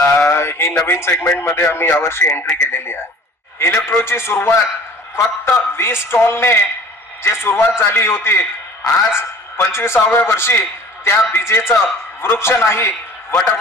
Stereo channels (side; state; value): both; normal; correlation 0.46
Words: ही नवीन सेगमेंट मध्ये आम्ही यावर्षी एंट्री केलेली आहे. इलेक्ट्रोची सुरुवात फक्त 20 स्टॉलने जे सुरुवात झाली होती, आज 25व्या वर्षी त्या बीजेचं वृक्ष नाही